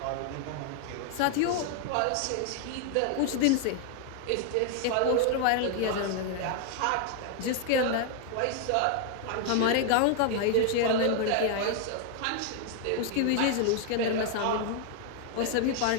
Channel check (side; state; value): both; different; correlation 0.00